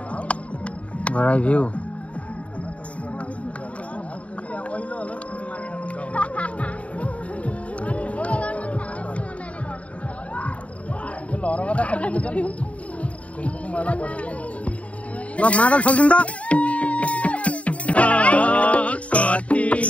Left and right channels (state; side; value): late; right; 0.065 ms